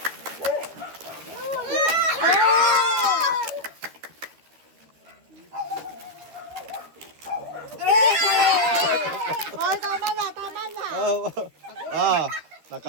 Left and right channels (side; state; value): left; late; 13 ms